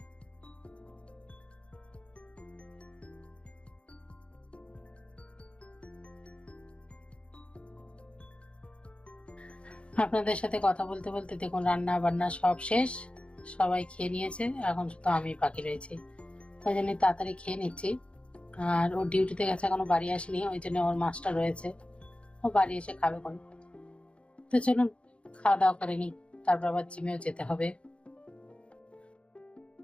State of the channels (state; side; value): late; right; 0.059 ms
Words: আপনাদের সাথে কথা বলতে বলতে দেখুন রান্না বান্না সব শেষ, সবাই খেয়ে নিয়েছে, এখন শুধু আমি বাকি রয়েছি। ওই জন্য তাড়াতাড়ি খেয়ে নিচ্ছি। আর ও ডিউটিতে গেছে, এখনো বাড়ি আসেনি, ওই জন্য ওর মাছটা রয়েছে, ও বাড়ি এসে খাবে কোন। তো চলুন খাওয়া দাওয়া করে নিই, তারপর আবার জিমেও যেতে হবে।